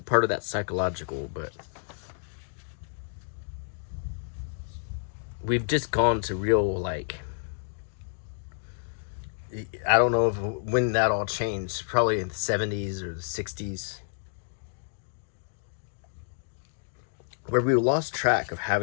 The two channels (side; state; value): right; silent; digital silence